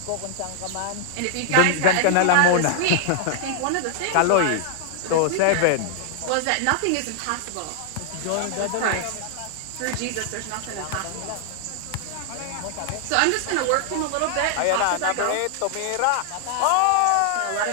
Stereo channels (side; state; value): both; different; correlation -0.01